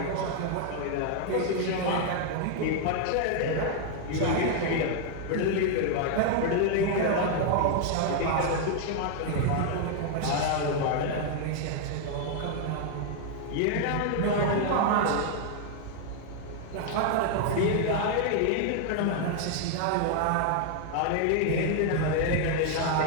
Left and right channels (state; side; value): different; both; correlation 0.00